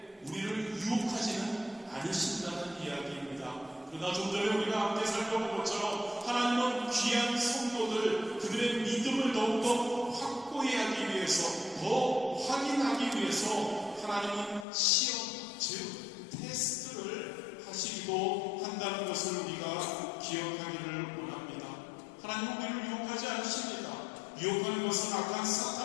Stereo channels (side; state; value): right; drops out; at 14.7 s